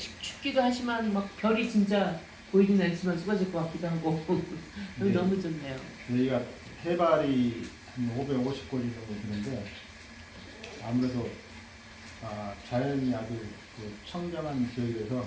춥기도 하지만 막 별이 진짜 보이진 않지만 쏟아질 것 같기도 하고 여기 네. 너무 좋네요. 여기가 해발이 한 550고리 정도 되는데 아무래도 자연이 아주 그 청정한 지역에서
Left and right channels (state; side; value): identical; both; correlation 1.00